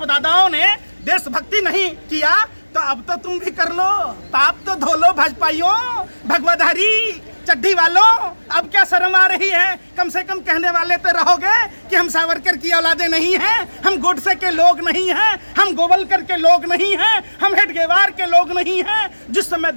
दादाओं ने देशभक्ति नहीं किया तो अब तो तुम भी कर लो, पाप तो धो लो भाजपाइयों, भगवाधारी चड्डी वालों। अब क्या शर्म आ रही है? कम से कम कहने वाले तो रहोगे कि हम सावरकर की औलादे नहीं हैं, हम गोडसे के लोग नहीं हैं, हम गोवलकर के लोग नहीं हैं, हम हेडगेवार के लोग नहीं हैं। जिस समय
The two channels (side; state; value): both; inverted; correlation -1.00